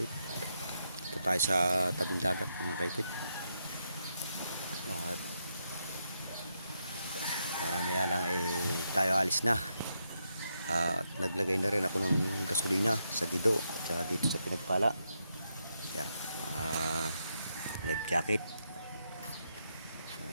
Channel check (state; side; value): inverted; both; correlation -0.81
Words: Ito tayo sa tabing dagat mga kaipit. At maya lang tayo alis na. At naglagay na rin ako ng gasolina sa Gido at dito sa Pinagpala. Yan, life jacket